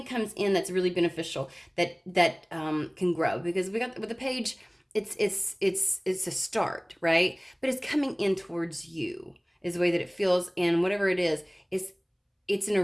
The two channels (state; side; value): identical; both; correlation 1.00